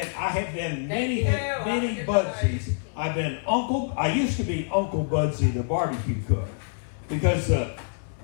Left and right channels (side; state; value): right; silent; 61 dB below the other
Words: been many Budsies. I've been Uncle. I used to be Uncle Budsy, the barbecue cook, because the